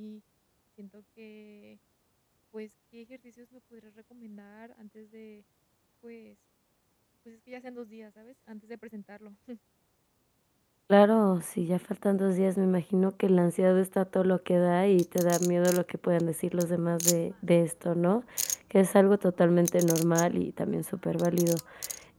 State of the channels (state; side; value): identical; both; correlation 1.00